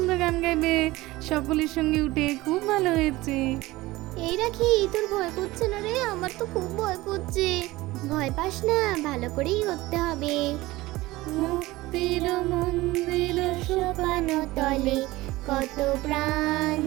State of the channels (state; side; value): quieter; left; 19.1 dB